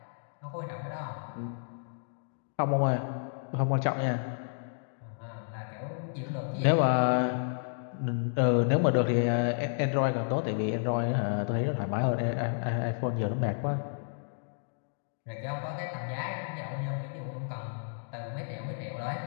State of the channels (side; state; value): right; silent; digital silence